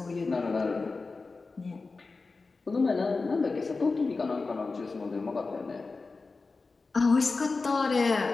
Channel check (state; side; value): quieter; right; 4.0 dB